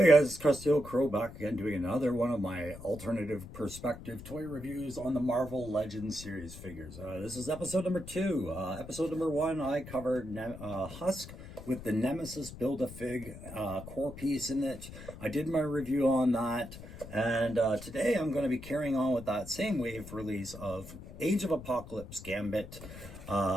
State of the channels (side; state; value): left; noise; rumble, 14 dB below the sound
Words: guys, it's Krusty Old Crow back again doing another one of my alternative perspective toy reviews on the Marvel Legends series figures. This is episode number 2. Episode number 1, I covered Husk with the Nemesis Build-A-Fig core piece in it. I did my review on that, and today I'm going to be carrying on with that same wave release of Age of Apocalypse Gambit.